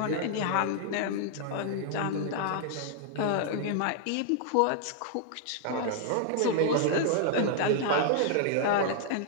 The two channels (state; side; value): different; both; correlation 0.00